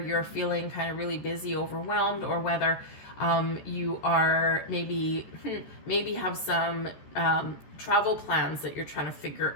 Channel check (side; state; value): right; late; 14 ms